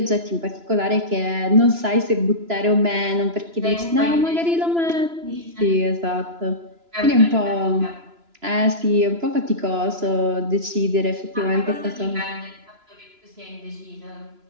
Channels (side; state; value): left; late; 3.0 ms